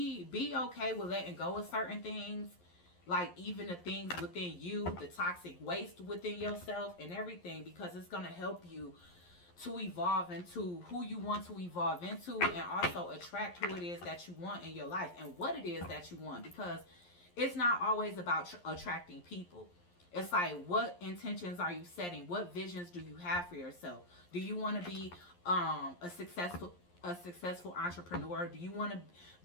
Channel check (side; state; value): right; late; 11 ms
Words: okay with letting go of certain things, like even the things within you, the toxic waste within yourself and everything, because it's going to help you to evolve into who you want to evolve into, and also attract who it is that you want in your life and what it is that you want, because it's not always about attracting people. It's like, what intentions are you setting? What visions do you have for yourself? Do you want to be a successful entrepreneur? Do you want to